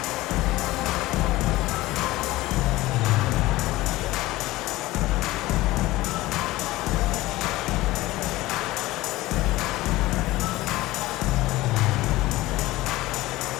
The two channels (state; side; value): quieter; right; 18.3 dB